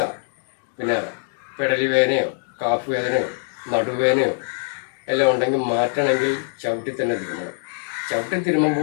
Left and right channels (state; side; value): silent; right; digital silence